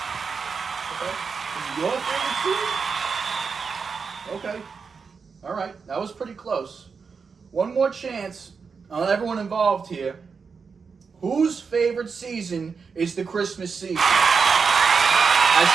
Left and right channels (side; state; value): left; quieter; 5.4 dB